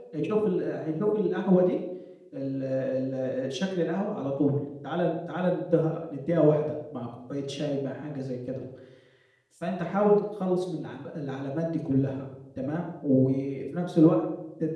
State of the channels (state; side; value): identical; both; correlation 1.00